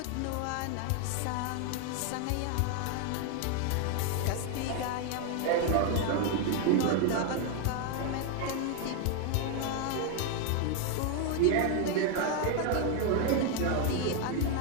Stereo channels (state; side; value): different; both; correlation 0.01